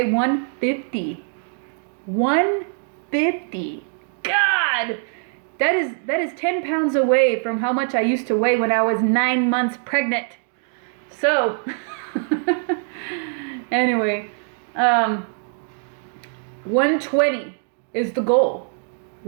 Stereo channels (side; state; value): left; silent; 59 dB below the other